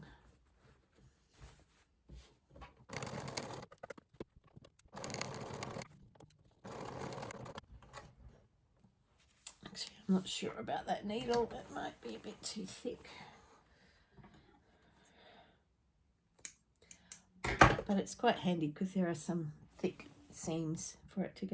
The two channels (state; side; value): identical; both; correlation 1.00